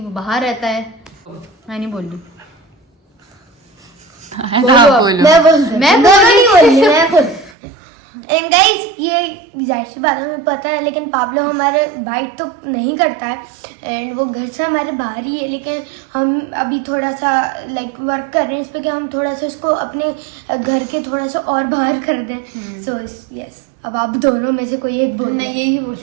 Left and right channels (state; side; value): drops out; left; at 7.5 s